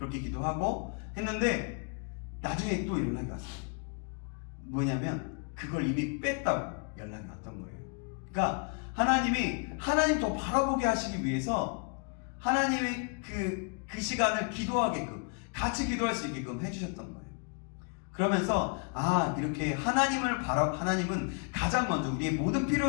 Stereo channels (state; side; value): quieter; right; 39.1 dB